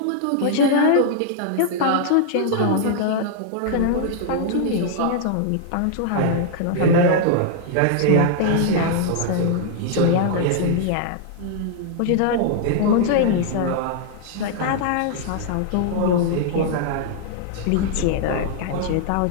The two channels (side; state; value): both; different; correlation -0.01